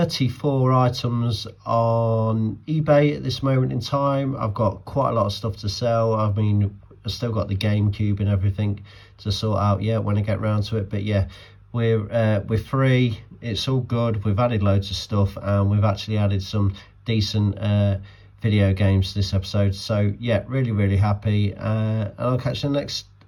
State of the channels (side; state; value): both; identical; correlation 1.00